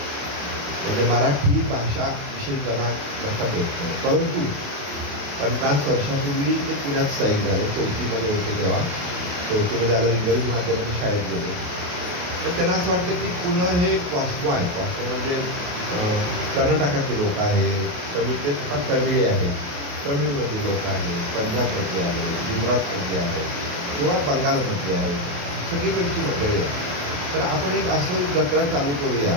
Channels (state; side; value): late; left; 28 ms